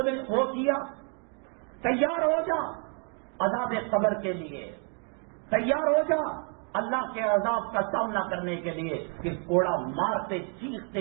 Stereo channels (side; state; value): left; quieter; 39.8 dB